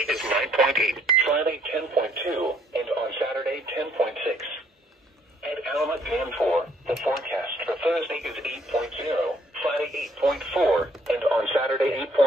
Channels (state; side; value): normal; both; correlation 0.65